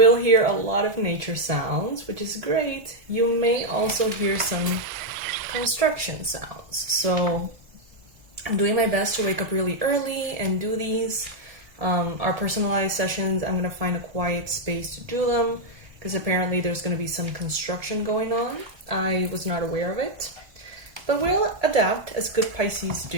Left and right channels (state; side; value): late; left; 1.7 ms